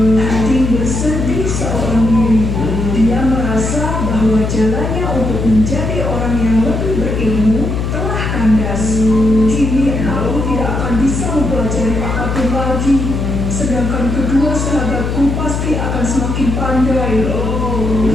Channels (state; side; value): noise; left; hum, 2 dB below the sound